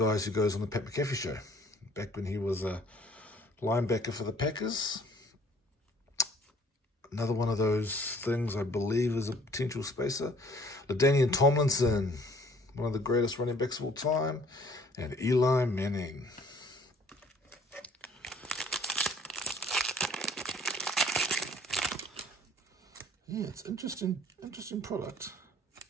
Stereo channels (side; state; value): both; normal; correlation 0.57